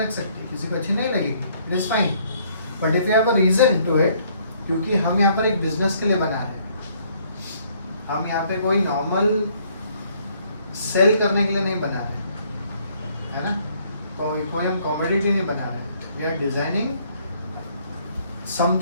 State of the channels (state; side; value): inverted; both; correlation -0.64